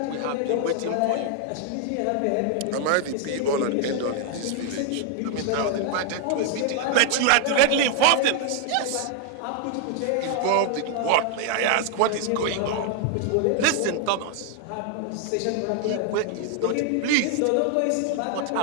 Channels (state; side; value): different; both; correlation 0.00